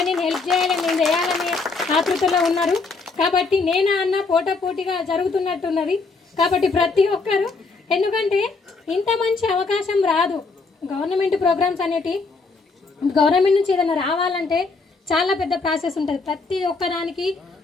నేను హెల్ప్ చేయాలి, నేను చేయాలని ఆతృతలో ఉన్నారు. కాబట్టి నేను అన్న పోటాపోటీగా జరుగుతున్నట్టున్నది. కాబట్టి ప్రతి ఒక్కరు, ఎందుకంటే ఇంత మంచి అవకాశం రాదు. గవర్నమెంట్ ప్రోగ్రామ్స్ అనేటి గవర్నమెంట్ నుంచి ఏదైనా రావాలంటే చాలా పెద్ద ప్రాసెస్ ఉంటుంది. ప్రతి ఒక్కదానికి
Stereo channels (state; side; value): quieter; right; 4.1 dB